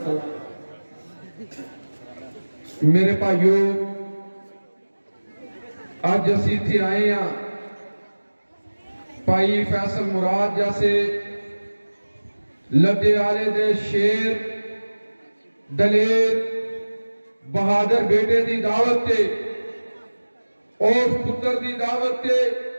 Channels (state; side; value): inverted; both; correlation -1.00